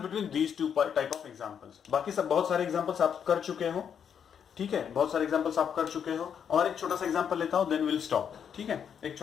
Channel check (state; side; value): quieter; right; 7.9 dB